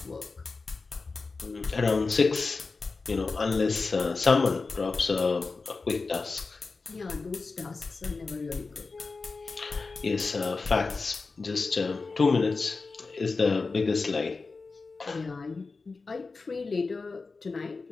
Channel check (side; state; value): right; quieter; 4.1 dB